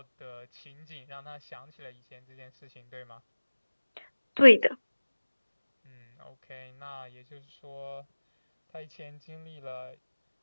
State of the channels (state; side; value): inverted; both; correlation -1.00